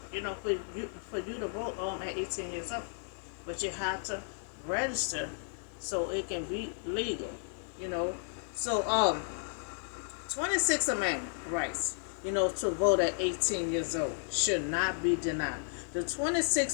for you to vote at 18 years old. But you have to register so it can be legal, So, 26 Amendment rights, to vote at 18 years old should not be denied. The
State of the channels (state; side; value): silent; right; digital silence